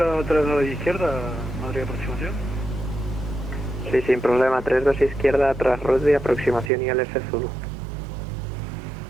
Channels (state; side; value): drops out; left; at 6.7 s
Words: 32 izquierda, Madrid, aproximación? Sí, sin problema, 32 izquierda, tras Rugby, aproximación ILS Zulu.